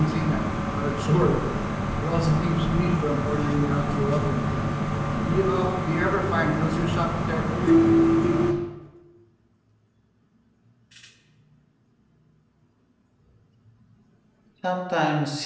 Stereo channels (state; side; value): identical; both; correlation 1.00